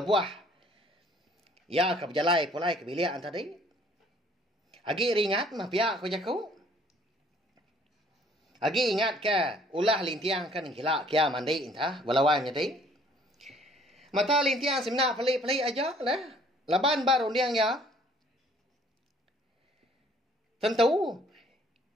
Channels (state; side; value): normal; both; correlation 0.58